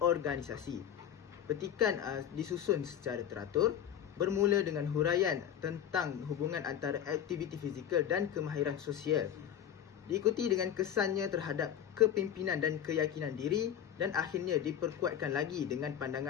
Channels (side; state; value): right; quieter; 9.7 dB